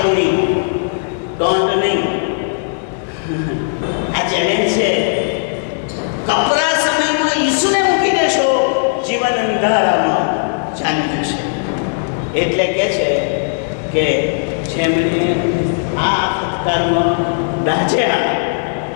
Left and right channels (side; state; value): right; silent; digital silence